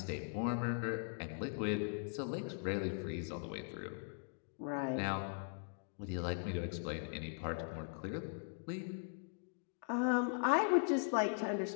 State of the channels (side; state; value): right; silent; digital silence